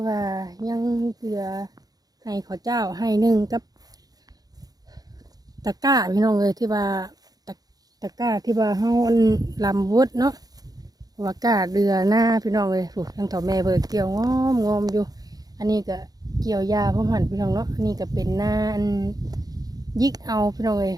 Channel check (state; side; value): late; left; 0.18 ms